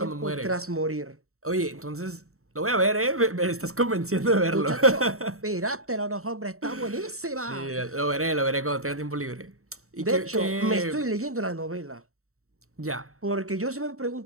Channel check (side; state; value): left; late; 0.64 ms